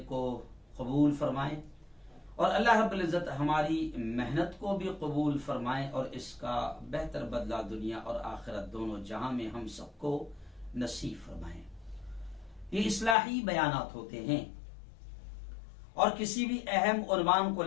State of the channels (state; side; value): drops out; right; at 13.2 s